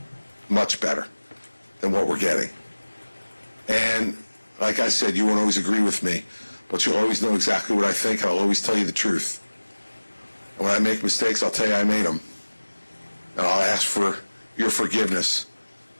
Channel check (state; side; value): inverted; both; correlation -1.00